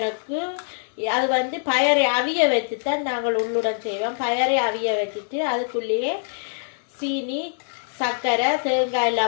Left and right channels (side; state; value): right; silent; digital silence